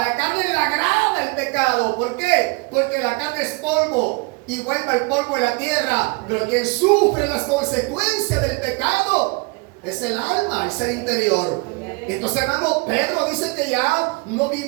carne le agrada el pecado. ¿Por qué? Porque la carne es polvo y vuelve al polvo de la tierra. Pero quien sufre las consecuencias del pecado es el alma, el ser interior. Entonces, hermano, Pedro dice que ya no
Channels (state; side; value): quieter; left; 28.5 dB